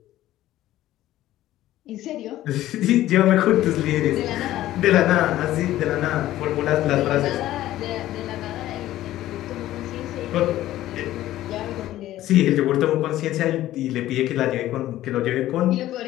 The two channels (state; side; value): quieter; right; 14.4 dB